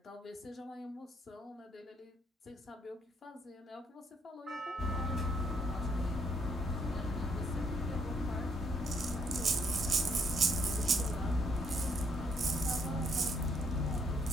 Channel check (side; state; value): both; normal; correlation 0.70